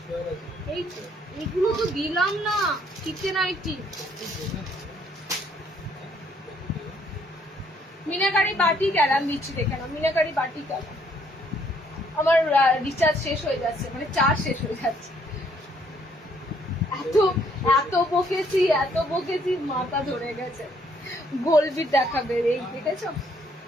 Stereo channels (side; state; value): both; normal; correlation 0.67